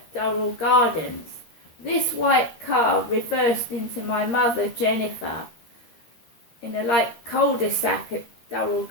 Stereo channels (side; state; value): right; late; 13 ms